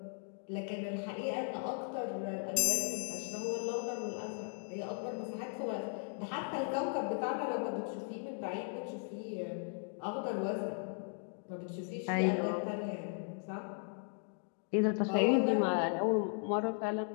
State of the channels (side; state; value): right; silent; 53 dB below the other